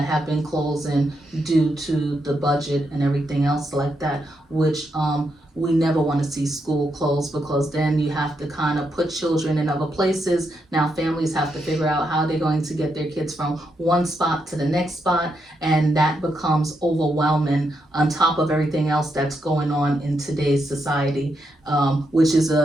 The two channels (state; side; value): normal; both; correlation 0.82